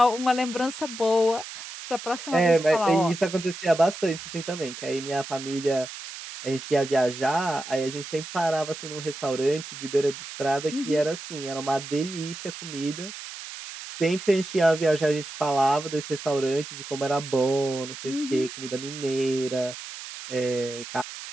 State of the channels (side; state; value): right; noise; hiss, 11 dB below the sound